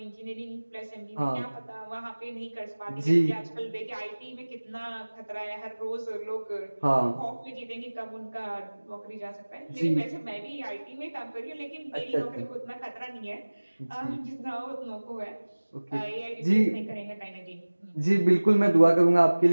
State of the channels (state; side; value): inverted; both; correlation -1.00